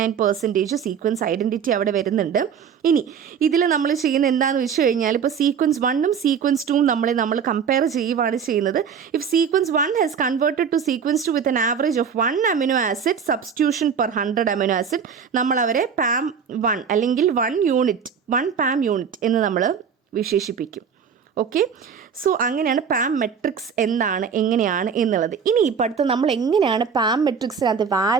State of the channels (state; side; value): quieter; left; 6.9 dB